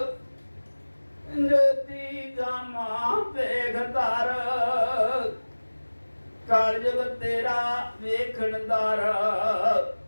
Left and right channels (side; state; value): both; inverted; correlation -1.00